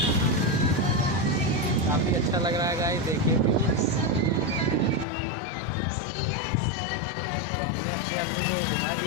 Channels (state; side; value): drops out; right; at 5.1 s